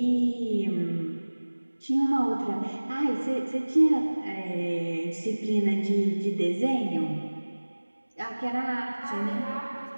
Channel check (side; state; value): both; inverted; correlation -1.00